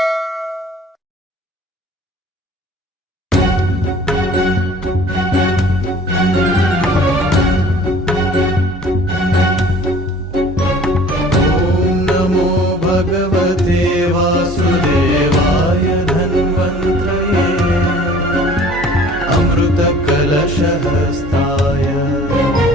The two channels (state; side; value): normal; both; correlation 0.49